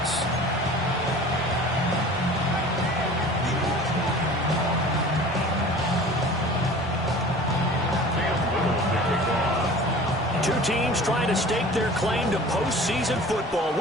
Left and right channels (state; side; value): normal; both; correlation 0.42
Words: Two teams trying to stake their claim to postseason football.